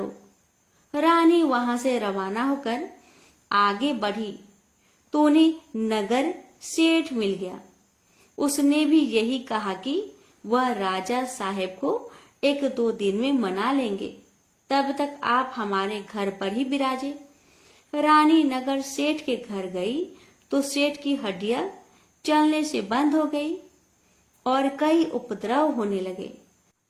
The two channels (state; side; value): identical; both; correlation 1.00